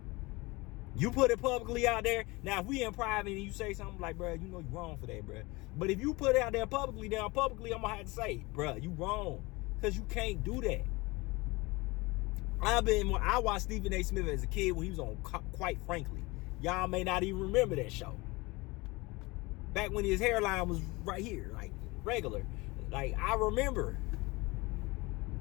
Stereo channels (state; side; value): quieter; right; 23.5 dB